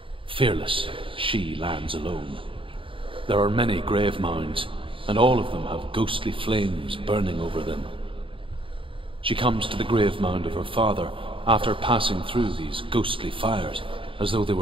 Fearless, she lands alone. There are many grave mounds, and all of them have ghostly flames burning over them. She comes to the grave mound of her father after passing through these ghostly fires, as though they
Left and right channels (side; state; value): left; late; 0.25 ms